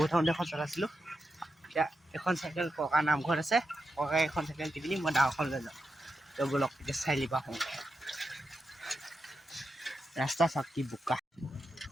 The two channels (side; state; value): both; normal; correlation 0.87